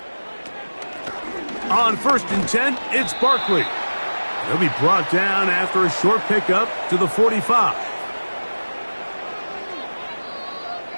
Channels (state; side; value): inverted; both; correlation -1.00